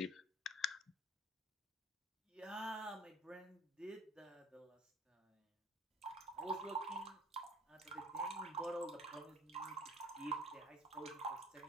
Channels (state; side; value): normal; both; correlation 0.51